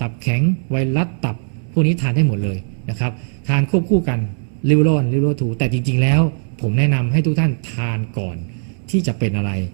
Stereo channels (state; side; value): silent; left; 65 dB below the other